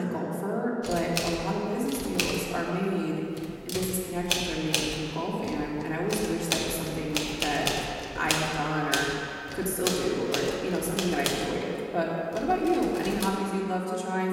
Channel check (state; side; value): identical; both; correlation 1.00